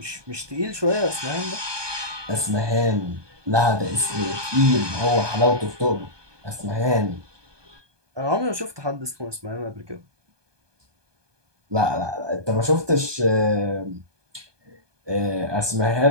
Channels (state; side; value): late; left; 1.2 ms